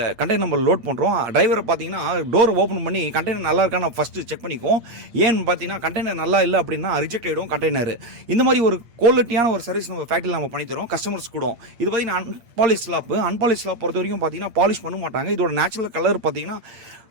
கண்டெய்னர் நம்ம லோட் பண்ணுறோம். டிரைவரை பார்த்தீங்கன்னா டோர் ஓப்பன் பண்ணி கண்டெய்னர் நல்லா இருக்கா நான் ஃபஸ்ட்டு செக் பண்ணிக்குவோம். ஏன்னு பார்த்தீங்கன்னா கண்டெய்னர் நல்லா இல்லை அப்படின்னா ரிஜெக்ட் ஆகிடும் கண்டெய்னர். இந்த மாதிரி ஒரு குவாலிட்டியான ஒரு சர்வீஸ் நம்ம ஃபேக்ட்ரியில் நம்ம பண்ணித்தரோம் கஸ்டமர்ஸ் கூட. இது பார்த்தீங்கன்னா அன்பாலிஷ் ஸ்லாப் பொறுத்த வரைக்கும் பார்த்தீங்கன்னா பாலிஷ் பண்ண மாட்டாங்க. இதோட நேச்சுரல் கலர் பார்த்தீங்கன்னா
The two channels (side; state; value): left; late; 8.6 ms